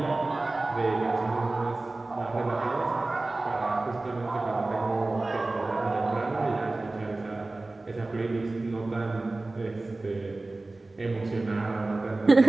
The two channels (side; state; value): left; quieter; 3.1 dB